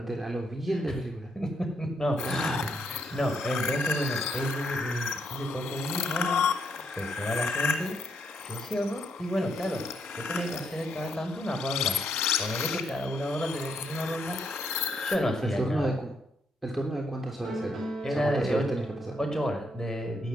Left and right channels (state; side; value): normal; both; correlation 0.76